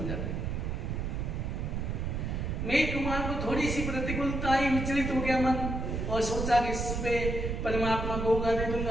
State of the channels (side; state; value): right; noise; rumble, 2 dB below the sound